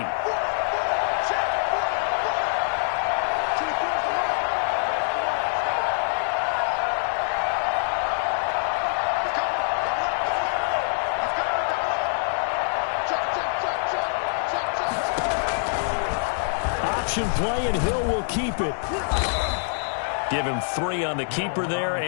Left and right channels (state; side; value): silent; right; digital silence